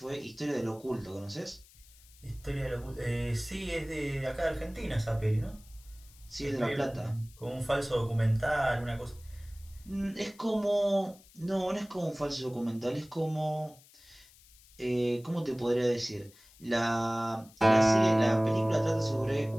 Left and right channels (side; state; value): left; noise; hiss, 25 dB below the sound